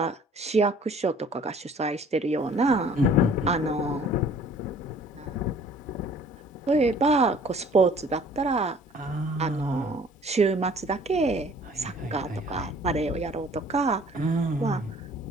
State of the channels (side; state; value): both; normal; correlation 0.53